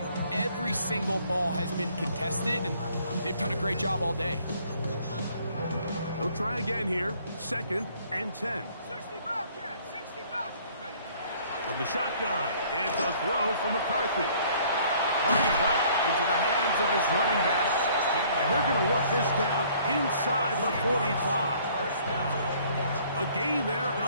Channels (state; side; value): inverted; both; correlation -0.58